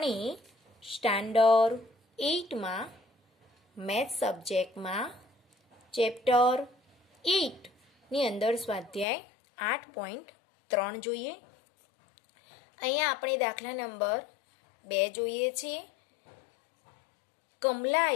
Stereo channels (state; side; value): drops out; right; at 9.1 s